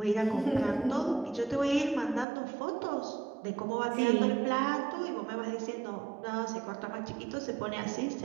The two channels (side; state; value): left; drops out; at 2.2 s